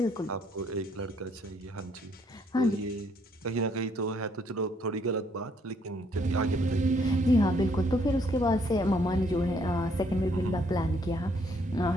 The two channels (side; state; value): both; normal; correlation 0.68